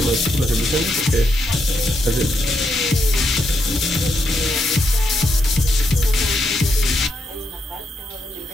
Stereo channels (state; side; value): normal; both; correlation 0.81